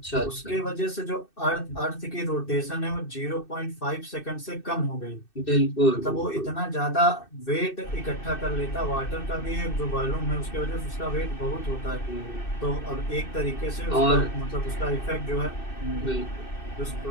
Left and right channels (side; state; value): right; late; 2.6 ms